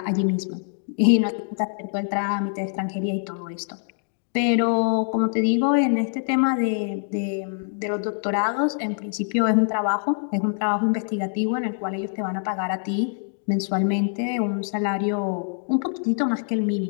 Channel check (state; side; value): silent; right; digital silence